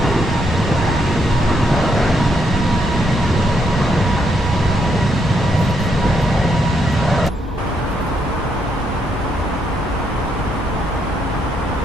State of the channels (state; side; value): normal; both; correlation 0.76